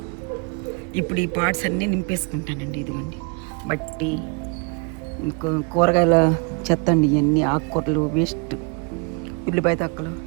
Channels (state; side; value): quieter; left; 33.6 dB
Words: ఇప్పుడు ఈ పాట్స్ అన్నీ నింపేసుకుంటానండి. ఇదిగోండి మట్టి, కూరగాయల చెత్త అండి, ఇవన్నీ ఆకుకూరలు వేస్ట్, ఉల్లిపాయ తక్కలు,